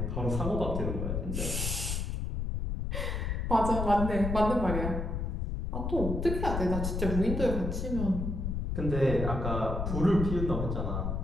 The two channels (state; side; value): noise; left; rumble, 2 dB below the sound